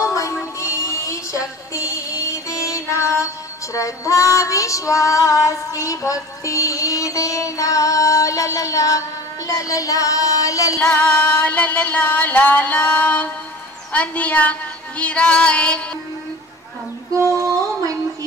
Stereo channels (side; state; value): both; normal; correlation 0.40